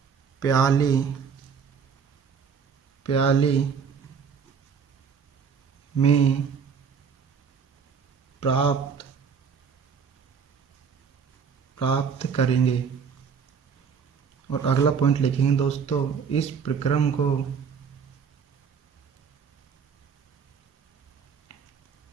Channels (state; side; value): quieter; left; 6.4 dB